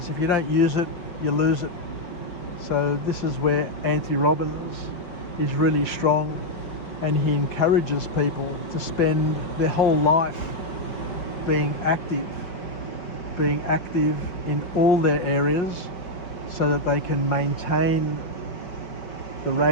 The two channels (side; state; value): right; late; 5.5 ms